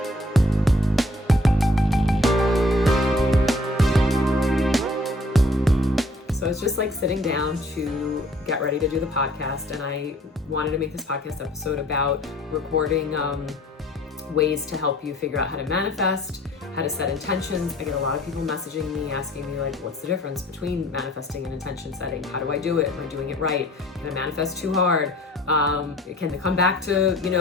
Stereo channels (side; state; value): both; normal; correlation 0.56